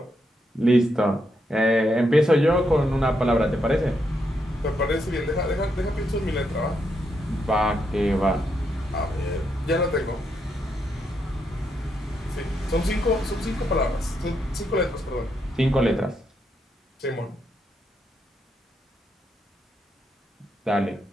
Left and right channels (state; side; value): normal; both; correlation 0.80